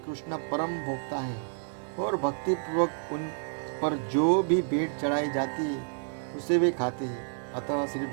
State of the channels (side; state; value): left; silent; 58 dB below the other